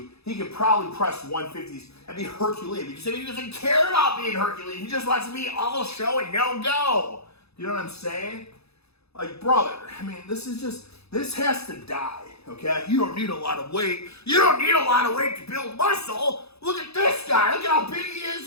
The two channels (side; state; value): right; late; 0.79 ms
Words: he could probably press 150s and be Herculean. Because he doesn't care about being Herculean. He just wants to be all show and no go. You know what I'm saying? Like, brother, this has to die. Okay? You don't need a lot of weight. You don't need a lot of weight to build muscle. Look at this guy. Look at how big he is,